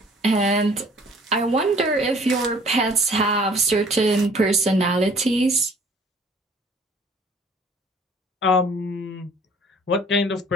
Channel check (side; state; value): both; normal; correlation 0.54